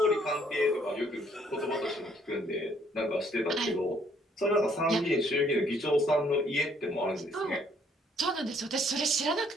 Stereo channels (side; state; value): both; normal; correlation 0.65